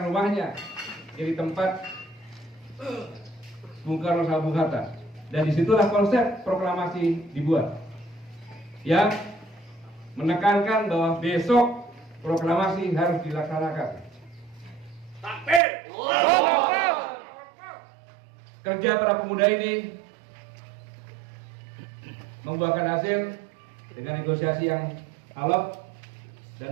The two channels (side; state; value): left; drops out; at 15.6 s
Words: rumahnya jadi tempat Bung Karno sama Bung Hatta. Dan disitulah konsep proklamasi dibuat, yang menekankan bahwa besok proklamasi harus dilaksanakan. Takbir. Kerja para pemuda ini membuahkan hasil dengan negosiasi yang alot.